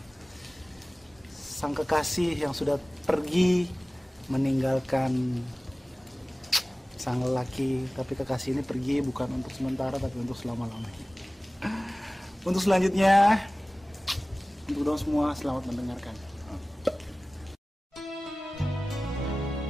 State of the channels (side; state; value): both; normal; correlation 0.98